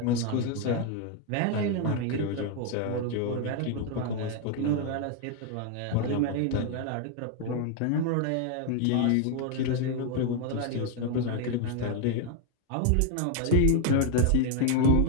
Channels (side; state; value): both; different; correlation 0.01